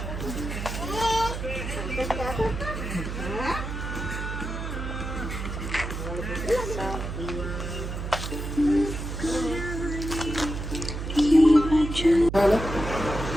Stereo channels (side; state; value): right; noise; hum, 5 dB below the sound